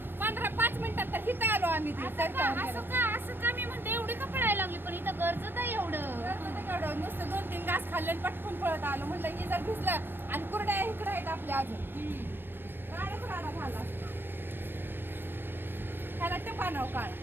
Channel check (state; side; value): late; left; 0.097 ms